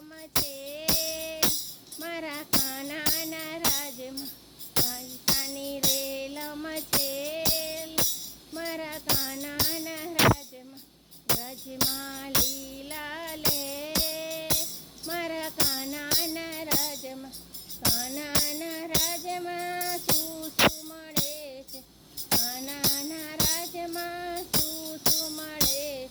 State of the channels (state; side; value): identical; both; correlation 1.00